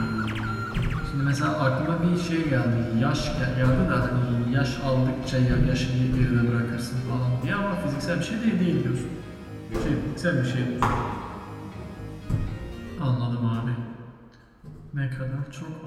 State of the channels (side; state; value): both; identical; correlation 1.00